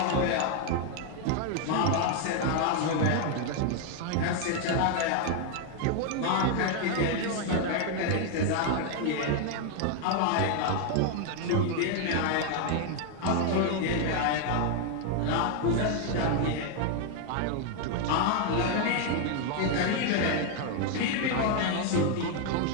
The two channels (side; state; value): both; different; correlation 0.01